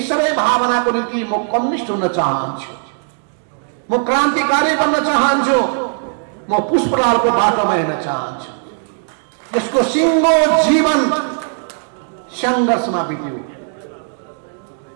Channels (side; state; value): left; silent; digital silence